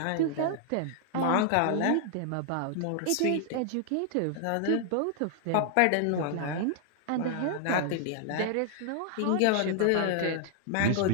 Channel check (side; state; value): both; different; correlation -0.01